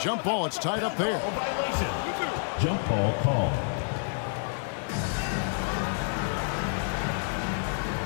ball. It's tied up there. Violation. Jump ball call.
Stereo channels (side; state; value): right; silent; digital silence